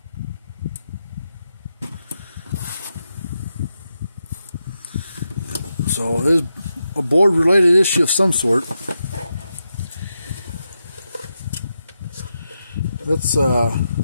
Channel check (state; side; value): inverted; both; correlation -0.86